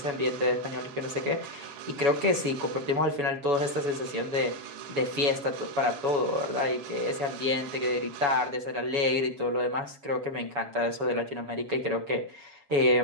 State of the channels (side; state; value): left; late; 7.1 ms